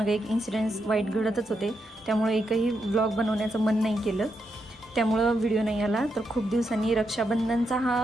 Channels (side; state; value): both; normal; correlation 0.82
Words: एक इन्सिडेंट्स वाईट घडतच होते. त्यामुळे एकही व्लॉग बनवण्याचं मन नाही केलं. त्यामुळं व्हिडिओ नाही आला. तर खूप दिवसांनी रक्षाबंधनचा